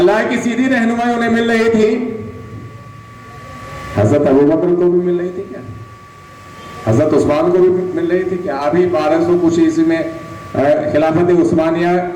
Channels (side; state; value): both; identical; correlation 1.00